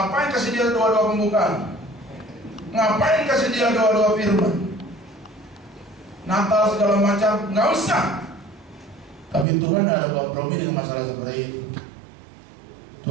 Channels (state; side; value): drops out; left; at 9.5 s